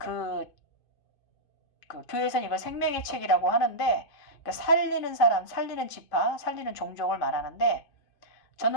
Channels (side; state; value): right; late; 2.5 ms